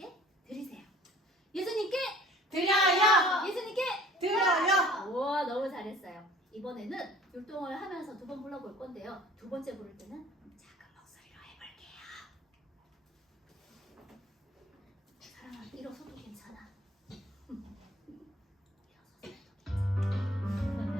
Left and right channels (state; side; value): normal; both; correlation 0.50